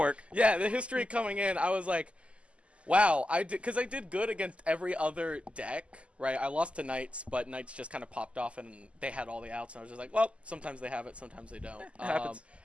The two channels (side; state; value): left; late; 0.058 ms